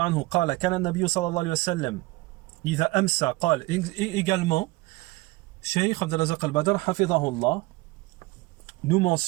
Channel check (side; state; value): left; quieter; 21.5 dB